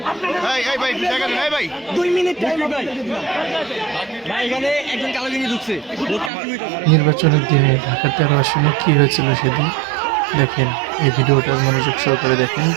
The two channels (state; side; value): drops out; left; at 6.3 s